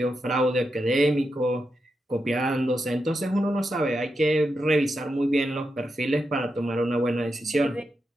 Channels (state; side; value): normal; both; correlation 0.86